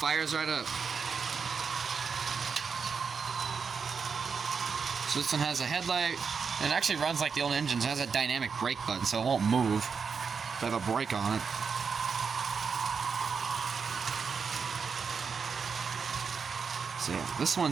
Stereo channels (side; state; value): left; quieter; 5.8 dB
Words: right up. So this one has a headlight, and it actually runs like the old engines. It has a dynamic brake button, so it won't move if I have a brake on it. So yeah, this